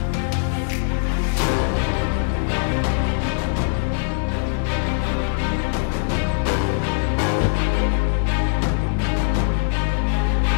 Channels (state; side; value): silent; right; digital silence